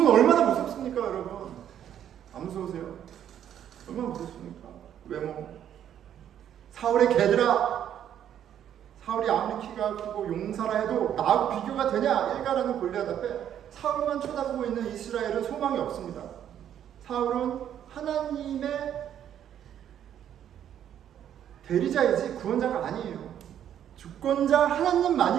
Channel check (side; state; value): left; quieter; 10.1 dB